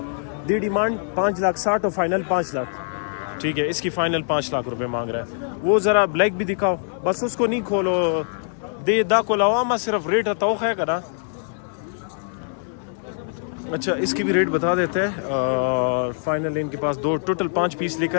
دی ڈیمانڈ 5,60,000 اور فائنل 5 لاکھ. ٹھیک ہے اس کی فائنل 5 لاکھ روپے مانگ رہا ہے. وہ ذرا بلیک بھی دکھاؤ، بس اس کو نہیں کھولو دے دا کو لواما صرف ریٹ توخ ہے کرا. اچھا اس کی بھی ریٹ بتا دیتے ہیں. فائنل ان کے پاس 2 ٹوٹل 5 پیس لے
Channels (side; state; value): right; silent; digital silence